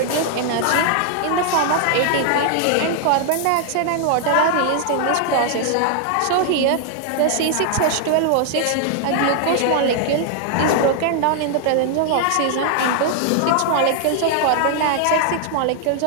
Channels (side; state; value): both; different; correlation 0.00